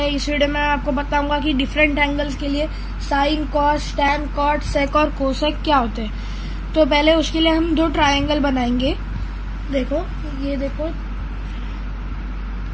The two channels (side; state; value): both; identical; correlation 1.00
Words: इस वीडियो में आपको बताऊंगा कि डिफरेंट एंगल्स के लिए साइन, कॉस, टैन, कॉट, सेक और कोसेक क्या होते हैं। तो पहले उसके लिए हम दो ट्रायंगल बनाएंगे। देखो, ये देखो,